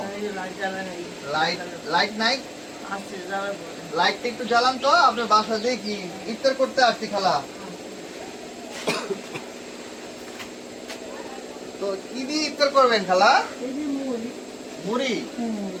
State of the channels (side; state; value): both; identical; correlation 1.00